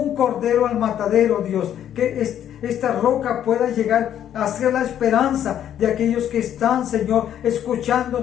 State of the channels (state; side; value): quieter; right; 10.3 dB